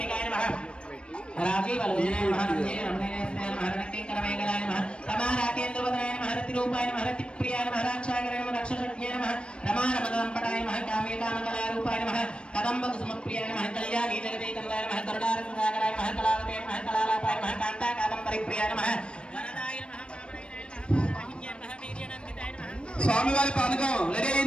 नमः राजीवलोचनाय नमः रम्ये महारणकिङ्करमेघलाय नमः रमाराकेन्द्रवदनाय नमः रतिरूपाय नमः रतिप्रियाय नमः राक्षाकराय नमः रक्षसज्ञाय नमः रमारमदम्पटाय नमः कामेकामकलारूपाय नमः कदम्बकुसुमप्रियाय नमः कल्याणी जगदेकमलाय नमः करुणारससागराय नमः कलावते नमः कलालापाय नमः कान्ताकादम्बरिप्रियाय नमः वरदाय नमः वामनाय नमः वीर्यनन्दिताय नमः స్వామివారి పానకం రెడీ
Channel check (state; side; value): late; right; 0.057 ms